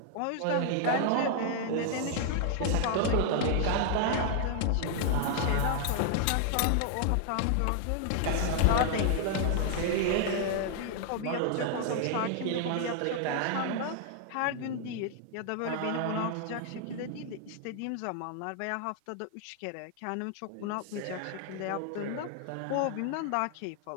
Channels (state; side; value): different; both; correlation 0.00